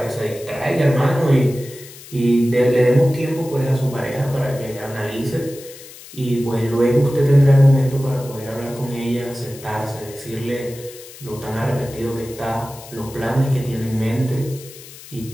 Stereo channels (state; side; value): noise; left; hiss, 18 dB below the sound